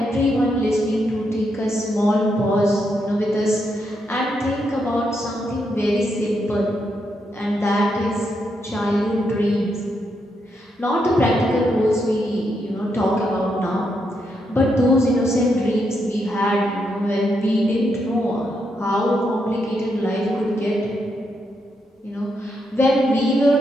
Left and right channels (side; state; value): both; normal; correlation 0.80